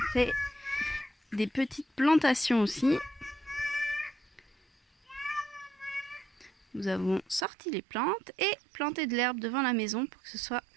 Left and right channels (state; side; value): drops out; left; at 7.5 s